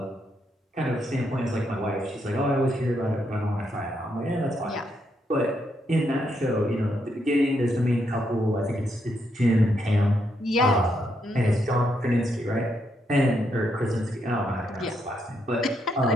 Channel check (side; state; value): both; normal; correlation 0.78